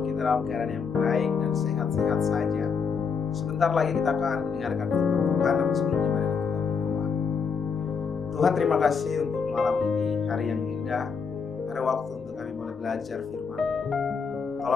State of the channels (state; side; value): quieter; right; 5.7 dB